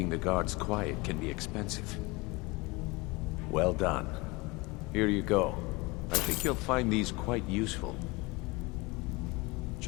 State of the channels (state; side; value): quieter; right; 24.5 dB